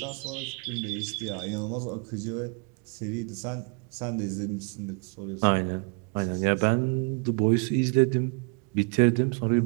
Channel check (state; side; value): quieter; left; 35.9 dB